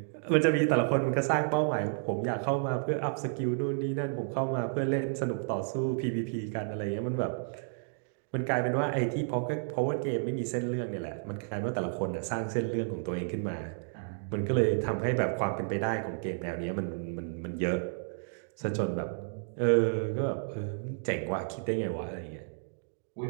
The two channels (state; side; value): silent; left; digital silence